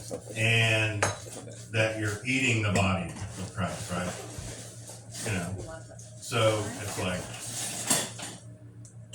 and that you're eating the body of Christ, right? You know, so it's like,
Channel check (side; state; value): both; identical; correlation 1.00